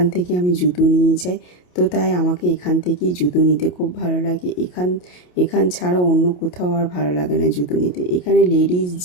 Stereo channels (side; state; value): right; late; 28 ms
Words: থেকে আমি জুতো নিয়ে যাই। তো তাই আমাকে এখান থেকেই জুতো নিতে খুব ভালো লাগে। এখান ছাড়া অন্য কোথাও আর ভালো লাগে না জুতো নিতে। এখানে লেডিস,